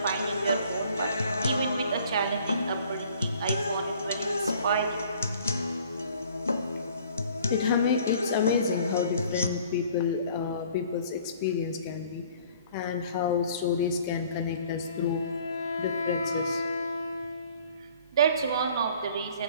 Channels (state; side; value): inverted; both; correlation -0.54